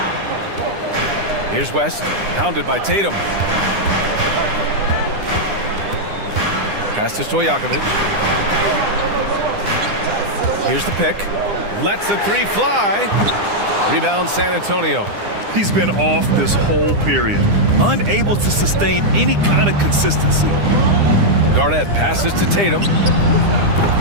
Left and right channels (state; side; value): late; left; 9.9 ms